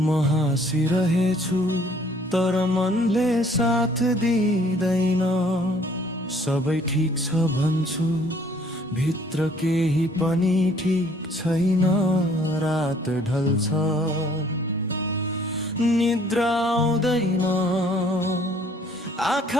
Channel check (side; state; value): both; normal; correlation 0.59